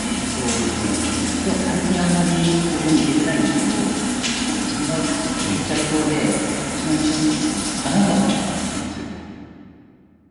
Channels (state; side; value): identical; both; correlation 1.00